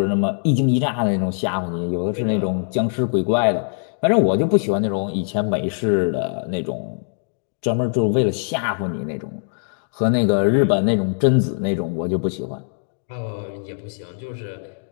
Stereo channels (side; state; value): right; silent; digital silence